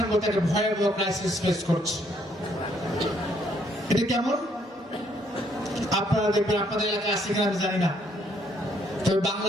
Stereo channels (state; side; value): normal; both; correlation 0.69